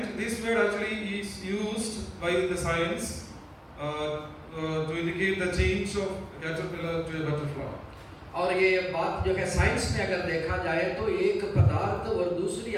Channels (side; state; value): both; identical; correlation 1.00